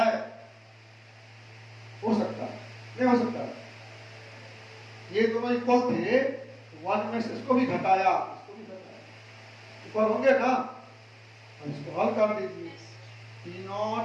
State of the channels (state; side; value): identical; both; correlation 1.00